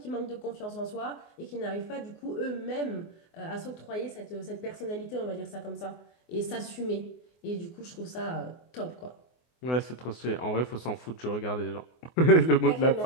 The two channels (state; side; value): late; right; 24 ms